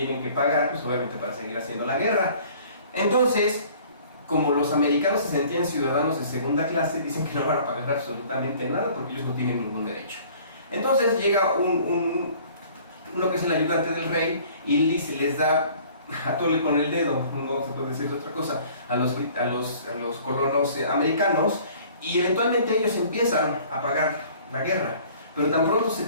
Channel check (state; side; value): inverted; both; correlation -0.52